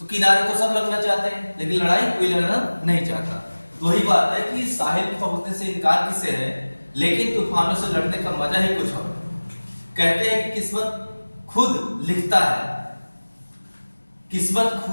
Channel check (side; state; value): both; inverted; correlation -1.00